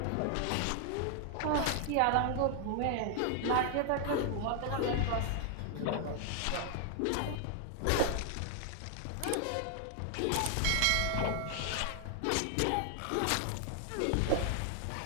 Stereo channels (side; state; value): both; different; correlation 0.00